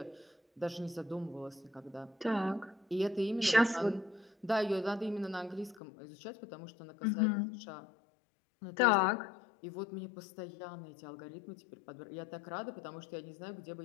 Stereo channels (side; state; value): right; drops out; at 5.8 s